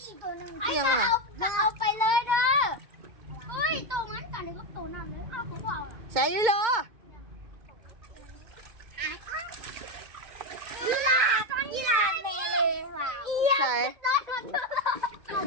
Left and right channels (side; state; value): left; late; 2.2 ms